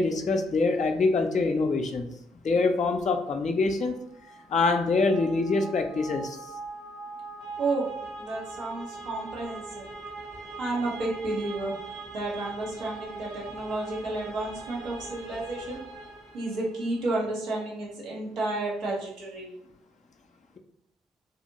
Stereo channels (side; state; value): both; normal; correlation 0.73